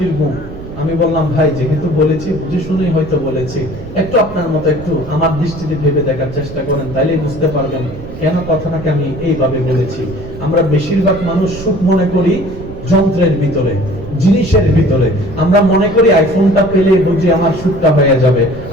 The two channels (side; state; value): right; noise; rumble, 13 dB below the sound